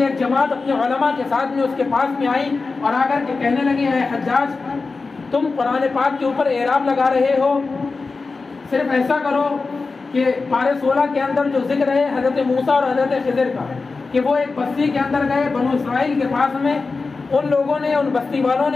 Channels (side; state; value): right; quieter; 4.1 dB